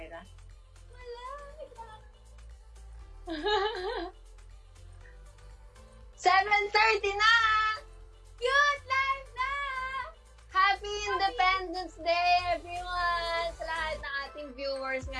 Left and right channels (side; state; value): both; identical; correlation 1.00